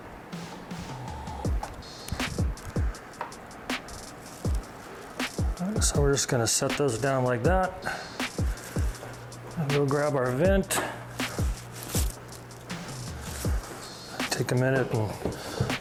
So we're just going to set those down like that. And we'll grab our vent. Take a minute and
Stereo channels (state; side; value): identical; both; correlation 1.00